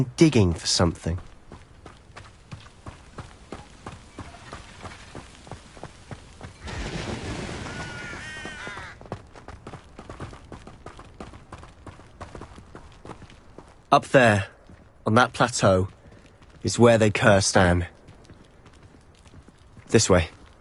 digging for something. Up there, on that plateau, is where they cursed Anne. This way.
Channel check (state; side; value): identical; both; correlation 1.00